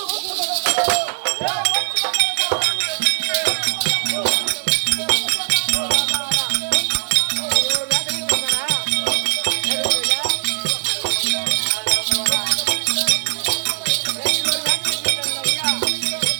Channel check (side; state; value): left; silent; digital silence